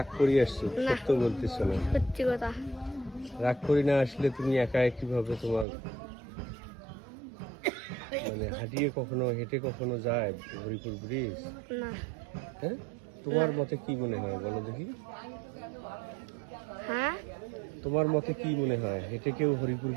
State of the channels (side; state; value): left; drops out; at 5.7 s